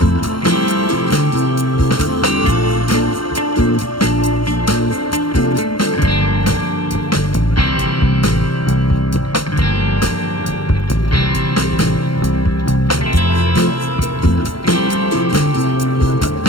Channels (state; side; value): late; right; 0.73 ms